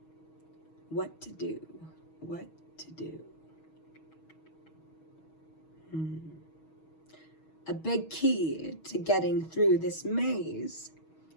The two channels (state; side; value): late; right; 6.3 ms